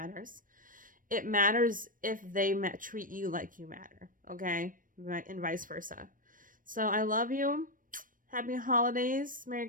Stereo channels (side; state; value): left; late; 0.40 ms